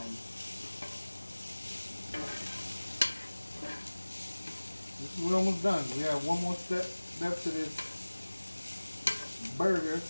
We're almost done. We have one more step to this burger.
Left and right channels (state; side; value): inverted; both; correlation -1.00